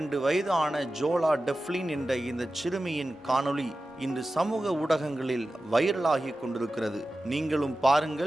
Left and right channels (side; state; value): both; normal; correlation 0.94